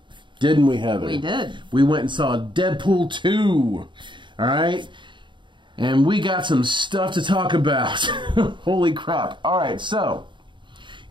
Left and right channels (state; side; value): late; left; 0.23 ms